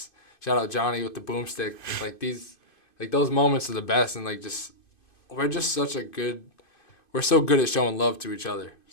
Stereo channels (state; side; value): late; right; 2.5 ms